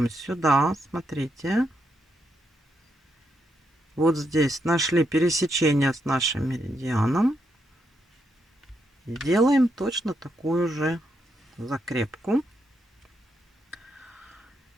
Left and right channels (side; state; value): both; normal; correlation 0.80